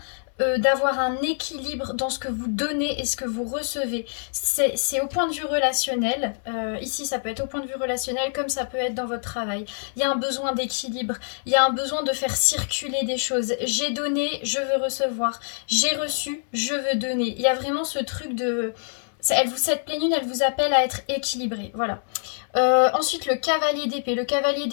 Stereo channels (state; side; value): silent; right; 62 dB below the other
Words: d'avoir un équilibre dans ce que vous donnez et ce que vous recevez. C'est au point de vue relationnel. Ici, ça peut être au point de vue relationnel comme ça peut être dans votre travail. Il y a un besoin d'équilibre. Il y a un besoin de faire circuler des choses. J'ai donné, je veux recevoir. J'ai reçu, je veux donner. Il y a vraiment ce truc de... Cette pleine lune, elle vous appelle à être équilibré. Voilà. Ensuite, le cavalier d'épée. Le cavalier